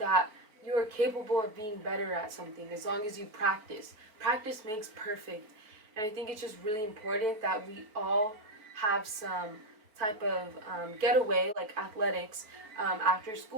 you are capable of being better at something as long as you practice. Practice makes perfect. And I think it's just really important that we all have some type of getaway, like athletics, after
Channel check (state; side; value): late; left; 4.5 ms